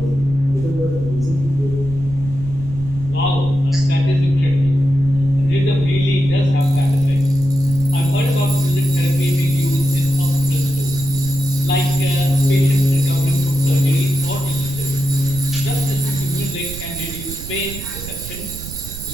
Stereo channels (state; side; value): noise; right; rumble, 11 dB below the sound